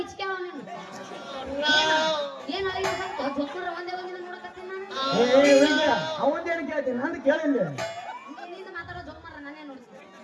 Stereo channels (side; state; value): both; identical; correlation 1.00